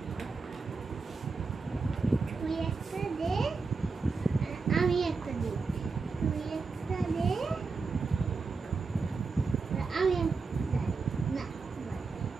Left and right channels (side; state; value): left; quieter; 4.4 dB